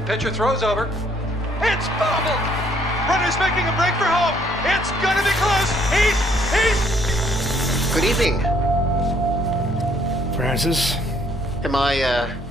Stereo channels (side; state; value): both; normal; correlation 0.65